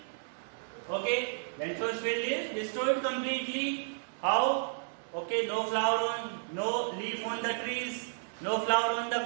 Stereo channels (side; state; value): left; silent; 56 dB below the other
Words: Okay, Lencho's field is destroyed completely. How? Okay, no flower on, no leaf on the trees, no flower on the